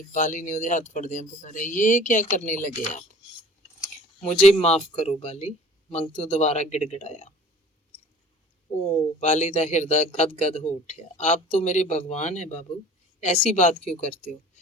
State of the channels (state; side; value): normal; both; correlation 0.47